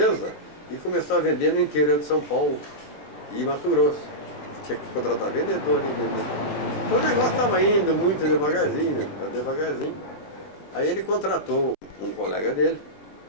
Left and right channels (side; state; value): right; late; 20 ms